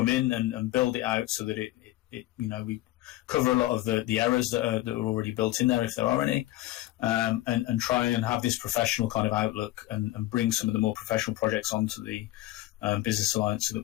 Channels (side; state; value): right; quieter; 16.4 dB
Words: in and build it out so that we cover a lot of the errors that are already built in there, if there are any, and try and have this professional kind of outlook and bring some of the more professional projects onto the Business Alliance so that